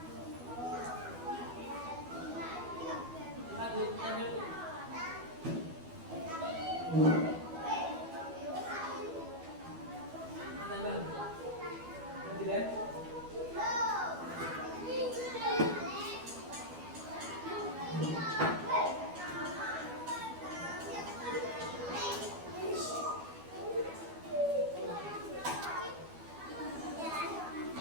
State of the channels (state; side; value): late; left; 12 ms